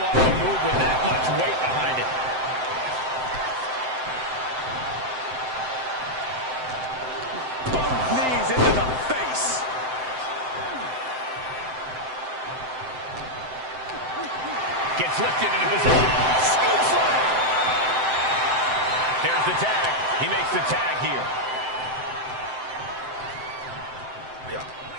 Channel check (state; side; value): late; left; 7.8 ms